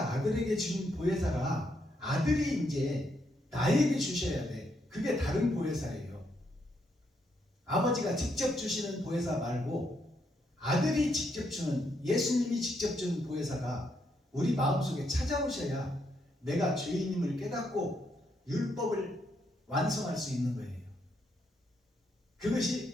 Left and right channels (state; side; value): normal; both; correlation 0.77